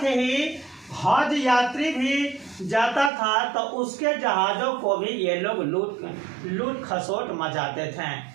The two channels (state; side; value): drops out; left; at 3.1 s